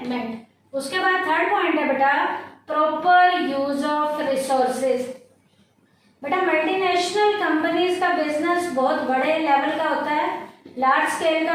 उसके बाद थर्ड पॉइंट है बेटा प्रॉपर यूज ऑफ रिसोर्सेज। बेटा मल्टीनेशनल कंपनीज का बिजनेस बहुत बड़े लेवल का होता है, लार्ज स्केल का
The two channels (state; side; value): identical; both; correlation 1.00